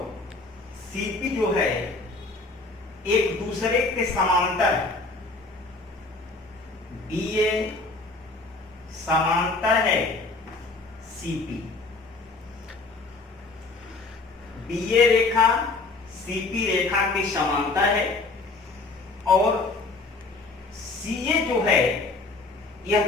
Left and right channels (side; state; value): right; quieter; 3.5 dB